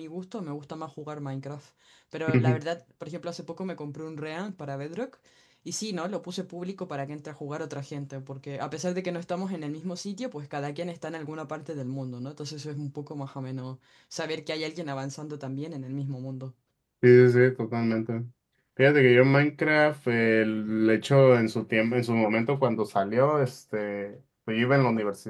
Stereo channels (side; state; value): both; identical; correlation 1.00